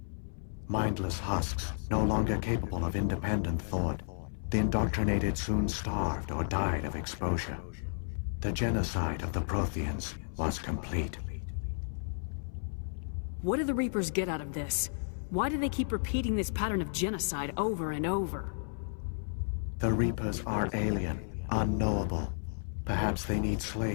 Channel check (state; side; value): silent; right; 56 dB below the other